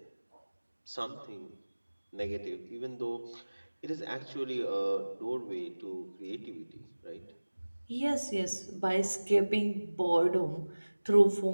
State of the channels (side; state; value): both; inverted; correlation -1.00